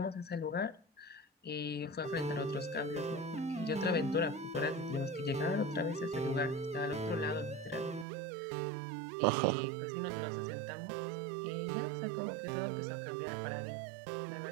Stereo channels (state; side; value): drops out; left; at 8.1 s